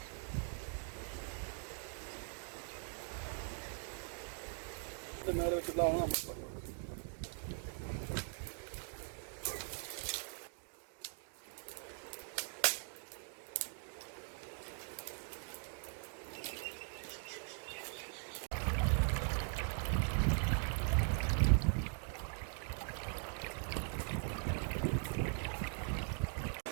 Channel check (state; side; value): silent; left; 50 dB below the other